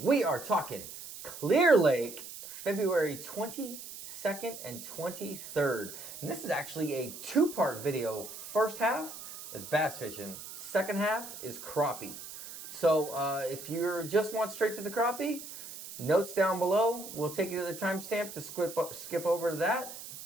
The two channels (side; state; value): right; noise; hiss, 12 dB below the sound